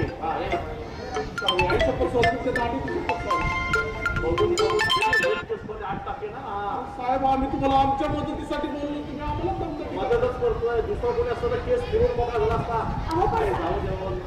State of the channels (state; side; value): identical; both; correlation 1.00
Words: साहेब आम्ही तुम्हाला आमच्या मदतीसाठी बोललो. तुम्ही आम्हाला मदतच करतोय. दुसरा कोणी असतं तर केस फिरून बघा झाला असता. जाऊ द्या